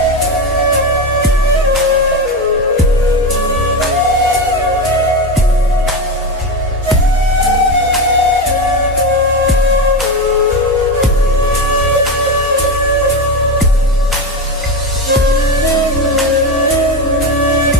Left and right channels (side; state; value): both; normal; correlation 0.16